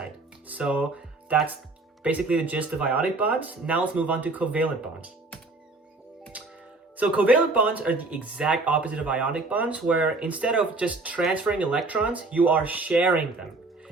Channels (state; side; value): quieter; left; 3.3 dB